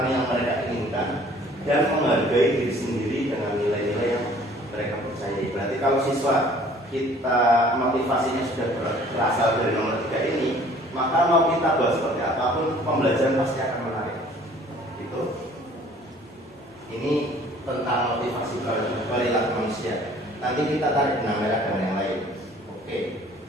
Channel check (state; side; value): normal; both; correlation 0.54